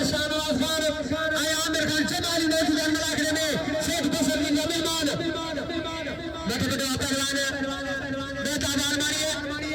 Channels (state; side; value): identical; both; correlation 1.00